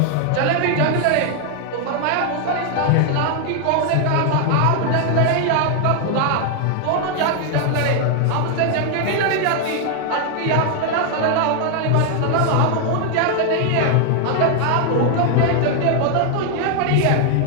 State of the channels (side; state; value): both; different; correlation 0.00